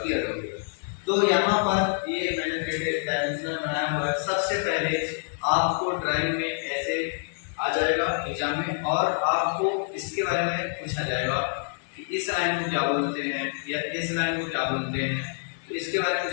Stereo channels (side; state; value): right; silent; digital silence